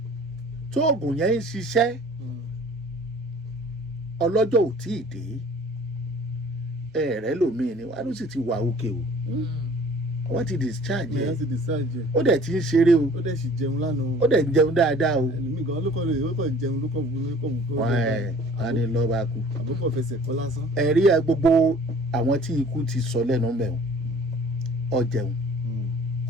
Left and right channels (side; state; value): both; normal; correlation 0.50